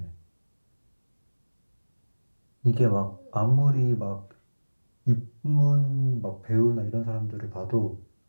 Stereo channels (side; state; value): both; inverted; correlation -1.00